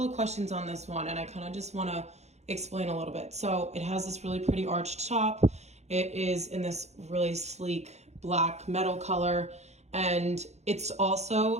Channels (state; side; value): late; left; 0.32 ms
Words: of questions on this one, and I kind of just want to explain a little bit. So it has this really pretty arched top. It is in this really sleek black metal color, and it's